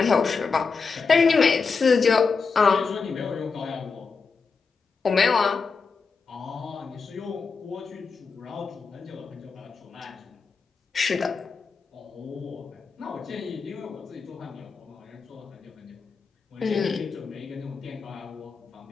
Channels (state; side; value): quieter; right; 5.0 dB